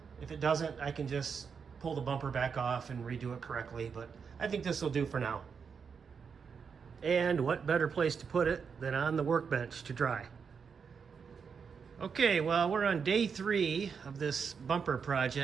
If it doesn't, I can just pull the bumper back off and redo it correctly, but I think this will do for now. And what better place to put it than on the workbench to dry. Okay, well, we're on day 3 of this bumper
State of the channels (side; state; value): left; quieter; 6.1 dB